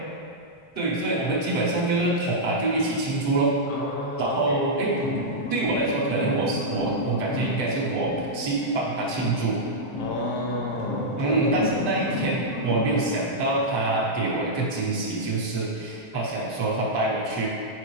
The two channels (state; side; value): late; right; 7.7 ms